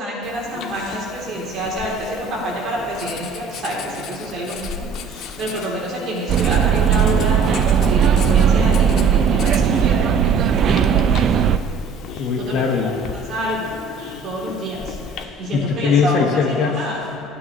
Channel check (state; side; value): quieter; left; 3.7 dB